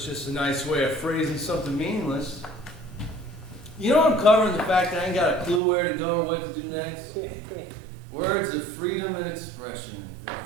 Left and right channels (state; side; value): drops out; left; at 5.6 s